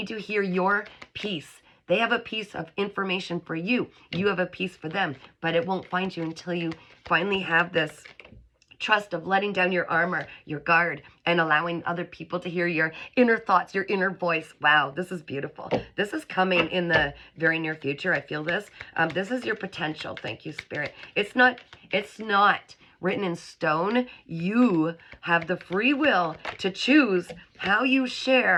to hear your piece. They have a piece of information for you. You have a piece for them, but it won't find you until you finally have this trust of letting down your armor, your guard, and allowing other people to hear your inner thoughts, your inner voice. Wow, this is beautiful. This is coming in the very near future. I feel this. This is your potential. Thank you, Spirit. It's not written in stone. You have the free will to choose how you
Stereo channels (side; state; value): both; identical; correlation 1.00